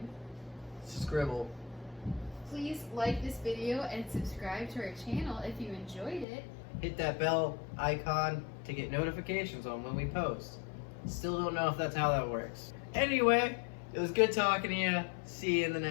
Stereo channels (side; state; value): right; drops out; at 6.2 s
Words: Scribble. Please like this video and subscribe to our channel if you enjoyed it. Hit that bell icon to get notifications on when we post. Still don't know if that's how that works. Anyway, it was good talking to you. See you in the